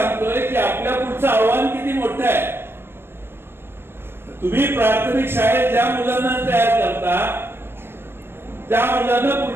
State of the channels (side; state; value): left; late; 0.11 ms